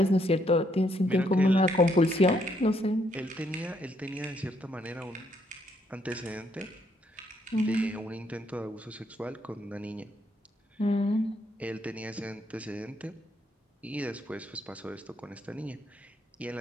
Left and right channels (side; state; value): both; normal; correlation 0.72